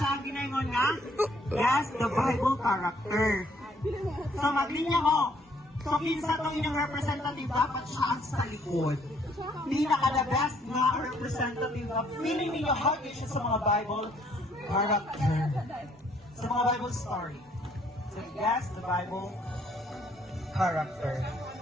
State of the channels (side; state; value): both; normal; correlation 0.65